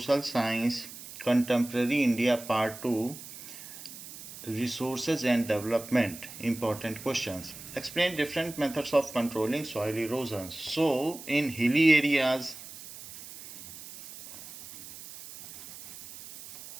science contemporary India part 2 resources and development important questions. Explain different methods of controlling soil erosion. So in hilly areas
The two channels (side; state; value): right; noise; hiss, 14 dB below the sound